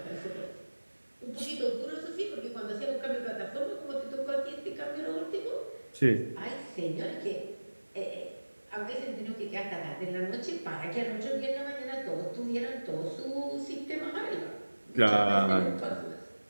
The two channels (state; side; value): inverted; both; correlation -1.00